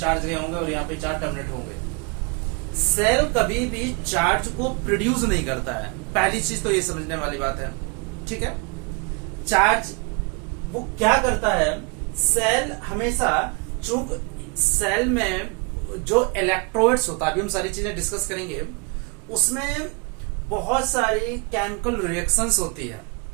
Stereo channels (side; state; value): left; quieter; 32.4 dB